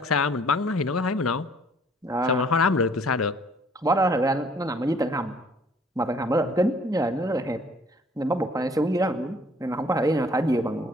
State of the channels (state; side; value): normal; both; correlation 0.59